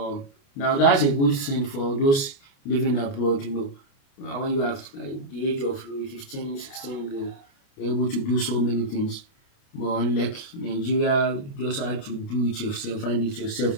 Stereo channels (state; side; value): late; right; 29 ms